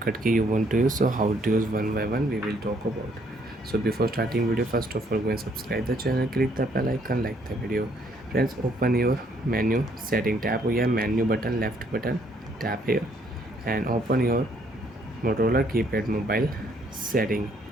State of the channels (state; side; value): normal; both; correlation 0.67